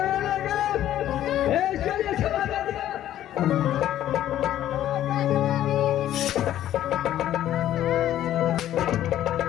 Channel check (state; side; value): quieter; right; 12.3 dB